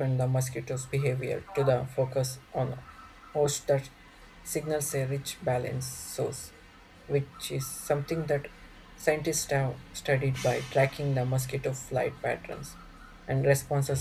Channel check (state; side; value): identical; both; correlation 1.00